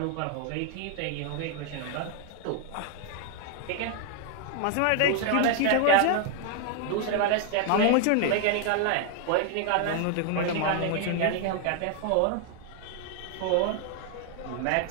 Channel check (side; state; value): both; different; correlation 0.00